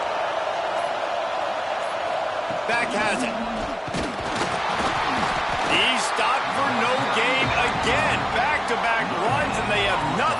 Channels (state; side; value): identical; both; correlation 1.00